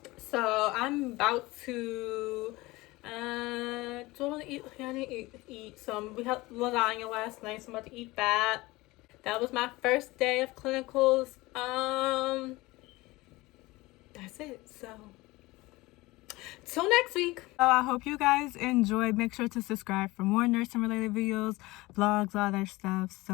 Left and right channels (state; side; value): quieter; right; 20.8 dB